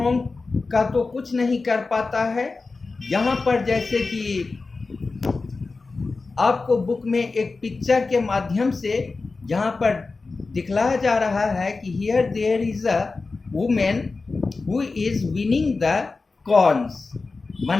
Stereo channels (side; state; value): right; quieter; 3.9 dB